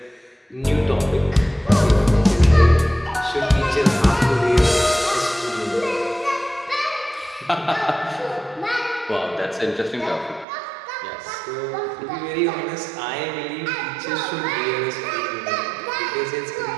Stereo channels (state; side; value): drops out; left; at 10.5 s